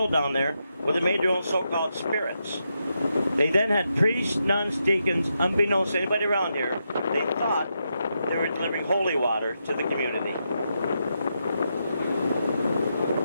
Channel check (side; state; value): both; inverted; correlation -0.84